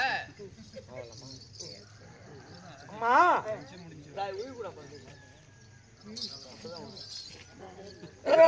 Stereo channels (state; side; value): identical; both; correlation 1.00